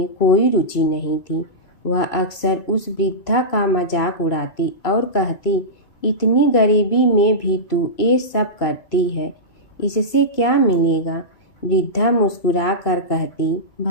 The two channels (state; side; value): late; right; 2.4 ms